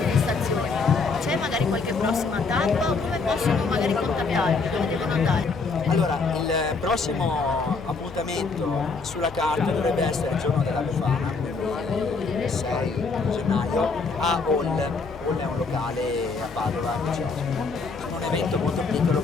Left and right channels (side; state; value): right; quieter; 4.4 dB